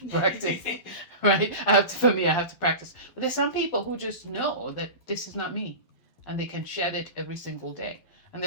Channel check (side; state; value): right; late; 12 ms